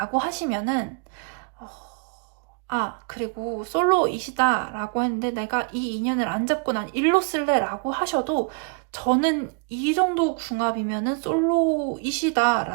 하시면은 그리고 솔로이시다 라고 했는데 내가 이 인연을 안 잡고 난 일로 쓸래 라고 하셔도 저는 이 정도 궁합이면은 솔로이시다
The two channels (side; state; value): left; quieter; 37.1 dB